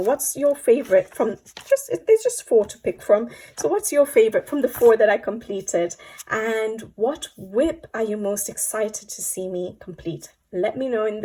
your favorite from, there's just 4 to pick from. So what's your favorite from the 4 that I completed, and what whip are you most excited to see me complete? Let me know in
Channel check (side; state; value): both; identical; correlation 1.00